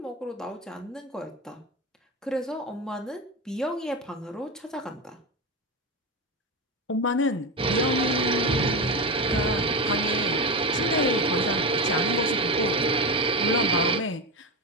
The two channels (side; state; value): both; normal; correlation 0.17